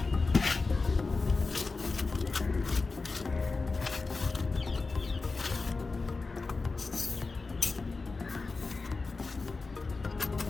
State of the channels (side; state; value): right; quieter; 4.0 dB